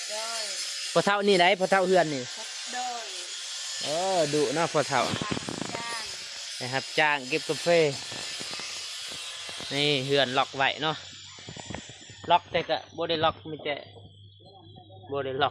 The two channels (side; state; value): both; identical; correlation 1.00